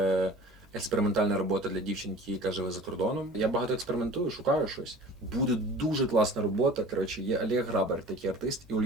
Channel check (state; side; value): normal; both; correlation 0.43